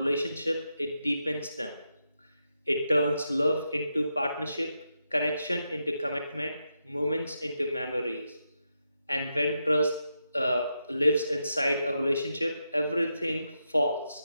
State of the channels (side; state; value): both; inverted; correlation -0.85